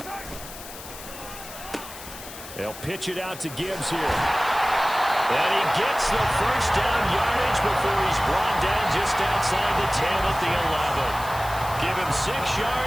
They'll pitch it out to Gibbs here. And he gets the first down yardage before he's brought down just outside the 10 at the 11. Give him 6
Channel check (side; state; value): left; noise; hiss, 14 dB below the sound